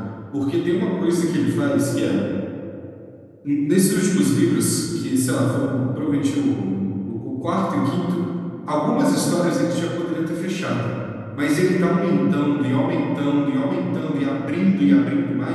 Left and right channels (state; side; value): identical; both; correlation 1.00